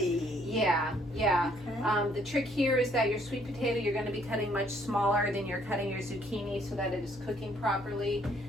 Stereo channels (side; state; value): both; normal; correlation 0.65